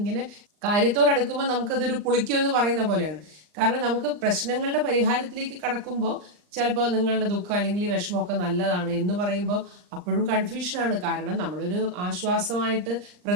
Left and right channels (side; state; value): left; late; 39 ms